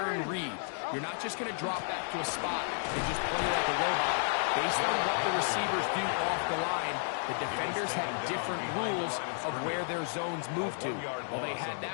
read. You're not just going to drop back to a spot and just play like a robot. Based on what the receivers do off the line, the defenders have different rules of where their zones move to. Well, they had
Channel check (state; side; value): silent; right; 56 dB below the other